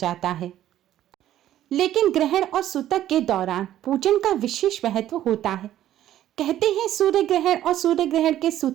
है। लेकिन ग्रहण और सूतक के दौरान पूजन का विशेष महत्व होता है। कहते हैं सूर्य ग्रहण और सूर्य ग्रहण के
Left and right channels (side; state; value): left; quieter; 12.4 dB